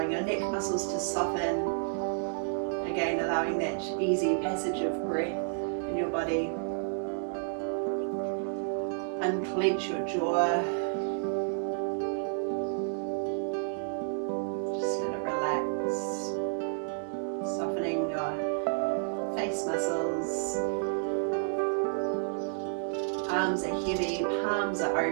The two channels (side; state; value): left; silent; 57 dB below the other